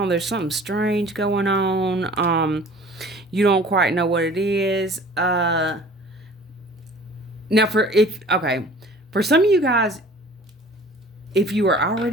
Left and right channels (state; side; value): normal; both; correlation 0.47